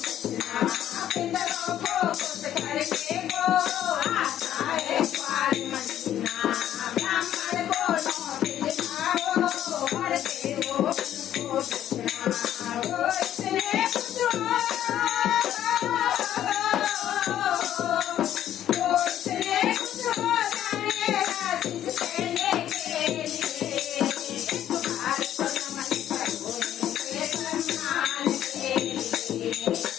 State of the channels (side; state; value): right; quieter; 11.3 dB